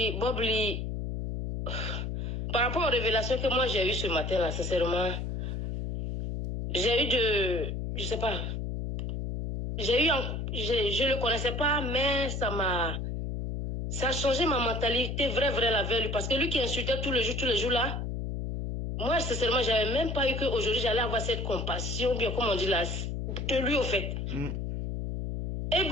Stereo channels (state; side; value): noise; left; hum, 3 dB below the sound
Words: par rapport aux révélations que moi j'ai eues ce matin, là, sincèrement, j'ai eu je sais pas, je le connaissais pas, mais ça a changé ma mentalité, vraie la veille, parce que lui qui insultait tous les jours là, moi, sincèrement, j'avais même pas eu qu'aujourd'hui j'allais avoir cette compassion, bien comme on dit là, de lui au fait. Et